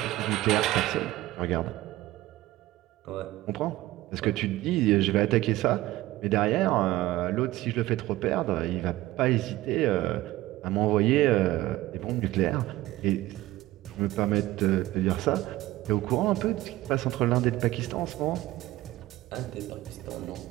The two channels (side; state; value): left; quieter; 16.8 dB